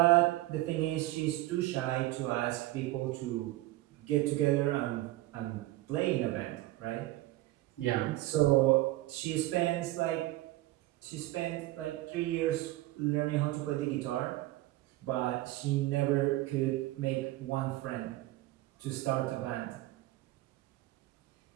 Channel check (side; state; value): left; quieter; 17.5 dB